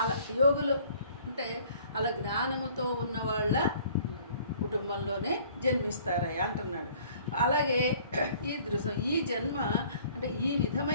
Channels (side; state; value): both; inverted; correlation -0.55